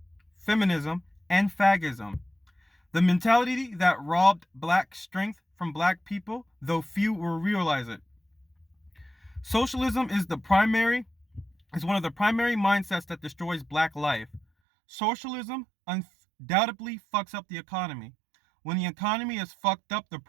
feminism, and fagism. The mentality that robbed Black strength from Black people, though few will realize it. Socialism is one of the primary mindsets that destroys Black life. Socialism undoubtedly fucks up the economy. When the economy is fucked up, the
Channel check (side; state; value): left; drops out; at 14.5 s